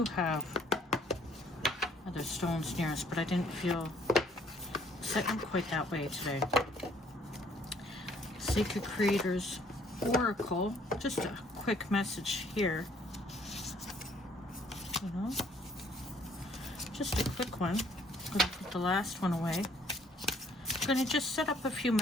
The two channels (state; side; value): normal; both; correlation 0.62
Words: have other stones near us, but I didn't feel setting quite that way today. Sacred Creators Oracle. Just a quick message here. You know, just a quick one. I'm going to put the last one away. I'm going to just set up a few